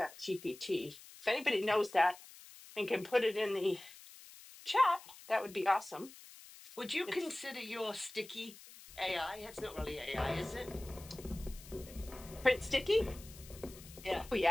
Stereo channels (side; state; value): left; noise; hiss, 18 dB below the sound